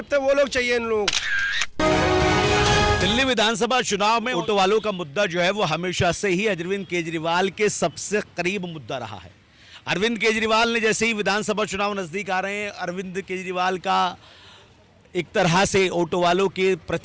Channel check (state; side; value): identical; both; correlation 1.00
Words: है, वो लोग चाहिए इन लोगों को। दिल्ली विधानसभा चुनाव में ऑटो वालों का मुद्दा जो है वो हमेशा से ही अरविंद केजरीवाल के सबसे करीब मुद्दा रहा है। अरविंद केजरीवाल ने जैसे ही विधानसभा चुनाव नजदीक आ रहे हैं, अरविंद केजरीवाल का एक तरह से ऑटो वालों के